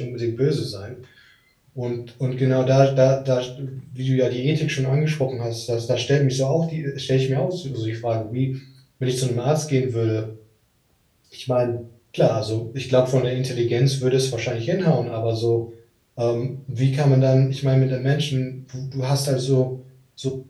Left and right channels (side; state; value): both; identical; correlation 1.00